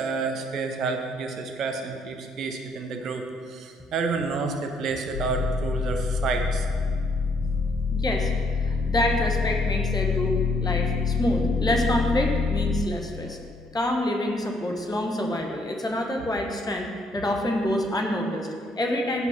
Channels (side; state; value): both; normal; correlation 0.69